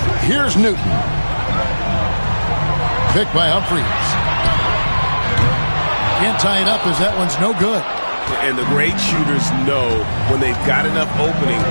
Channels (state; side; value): inverted; both; correlation -1.00